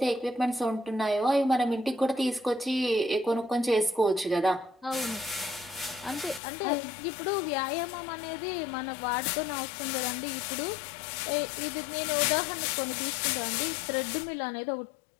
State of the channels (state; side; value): drops out; right; at 6.4 s